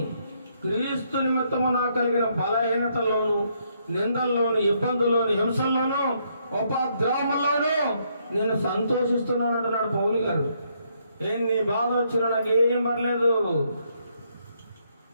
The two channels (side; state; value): both; inverted; correlation -0.73